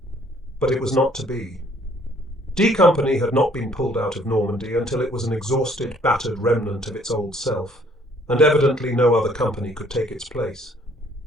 But it was not to be. D Company had not been pulled out of Normandy until it was an exhausted, battered remnant of its old self, and evidently no other company could take its place.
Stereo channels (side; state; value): both; normal; correlation 0.61